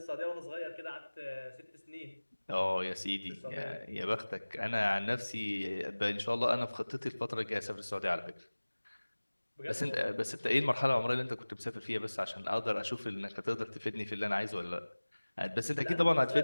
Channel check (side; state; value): both; inverted; correlation -1.00